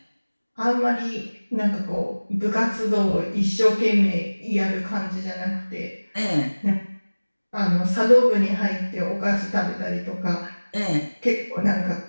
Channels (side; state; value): both; inverted; correlation -1.00